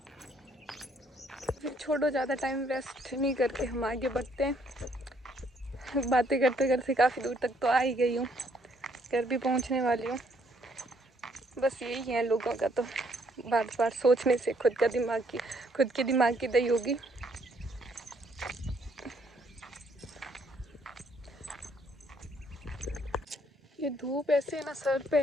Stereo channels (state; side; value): normal; both; correlation 0.68